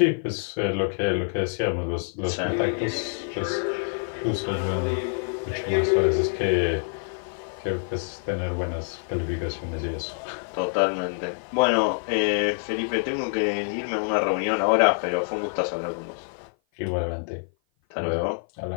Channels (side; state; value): right; silent; 56 dB below the other